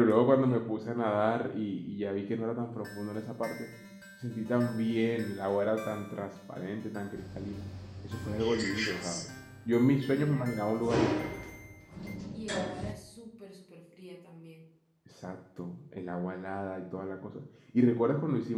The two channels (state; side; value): identical; both; correlation 1.00